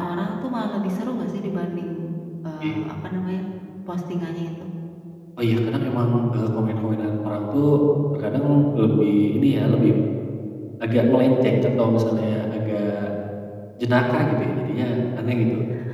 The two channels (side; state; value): both; identical; correlation 1.00